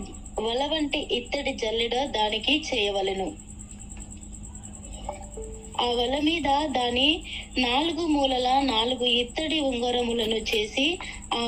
వల వంటి ఇత్తడి జల్లెడ దానికి చేయవలెను. ఆ వల మీద దాని 4 మూలల 4 ఇత్తడి ఉంగరములను చేసి ఆ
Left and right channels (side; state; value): both; identical; correlation 1.00